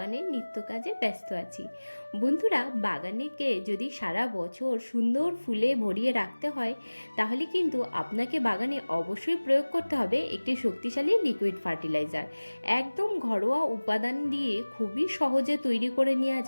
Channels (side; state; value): both; inverted; correlation -1.00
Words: নিত্য কাজে ব্যস্ত আছি। বন্ধুরা, বাগানেকে যদি সারা বছর সুন্দর ফুলে ভরিয়ে রাখতে হয়, তাহলে কিন্তু আপনাকে বাগানে অবশ্যই প্রয়োগ করতে হবে একটি শক্তিশালী লিকুইড ফার্টিলাইজার। একদম ঘরোয়া উপাদান দিয়ে খুবই সহজে তৈরি করে নেওয়া